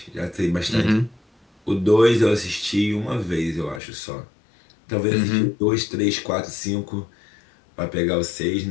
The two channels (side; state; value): right; drops out; at 3.8 s